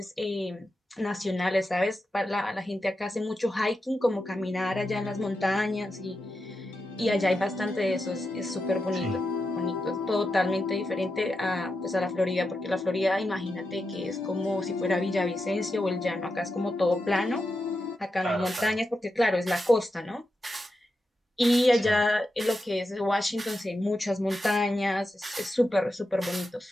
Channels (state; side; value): normal; both; correlation 0.88